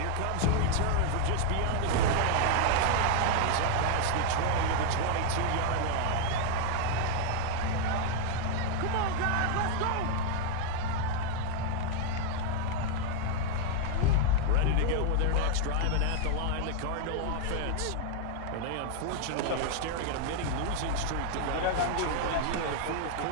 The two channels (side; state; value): both; different; correlation 0.00